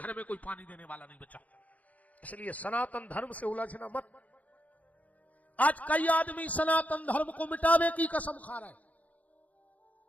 में कोई पानी देने वाला नहीं बचा। इसलिए सनातन धर्म से उलझना मत। आज कई आदमी सनातन धर्म को मिटाने की कसम खा रहे हैं।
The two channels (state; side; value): late; right; 0.073 ms